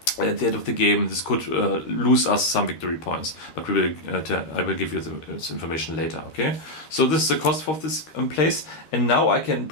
at the end of the game, this could lose us some victory points. But I will give you this information later. Okay. So this is the cost of this place. And now I can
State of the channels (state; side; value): late; right; 13 ms